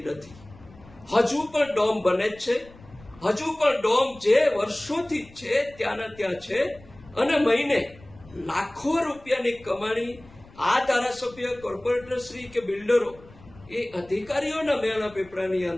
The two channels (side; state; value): left; noise; rumble, 23 dB below the sound